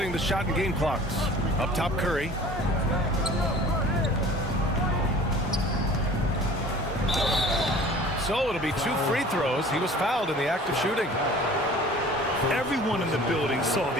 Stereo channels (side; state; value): both; normal; correlation 0.46